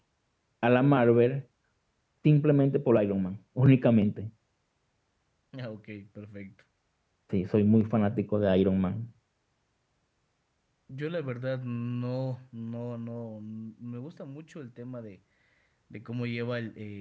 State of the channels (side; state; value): both; identical; correlation 1.00